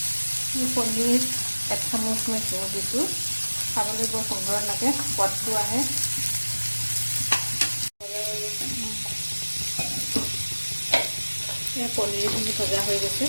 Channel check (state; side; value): inverted; both; correlation -1.00